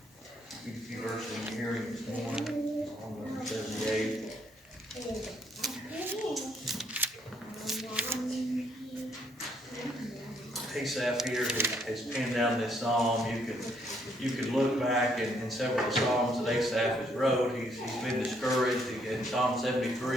few verses in hearing this morning. Psalm number 78. Asaph here has penned down this psalm. You could look back in several of the psalms that Asaph has wrote. He's been discouraged. In Psalm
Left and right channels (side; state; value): both; normal; correlation 0.70